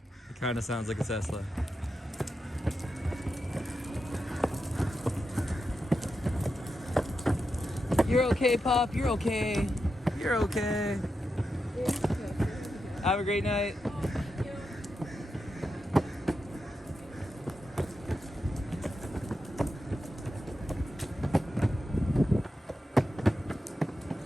It kind of sounds like a Tesla. You're okay, Pop. You're okay. You're okay. Have a great night.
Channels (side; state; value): both; normal; correlation 0.88